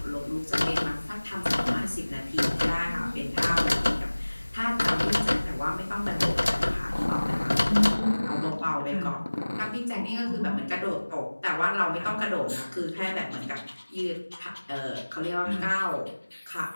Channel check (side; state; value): both; inverted; correlation -1.00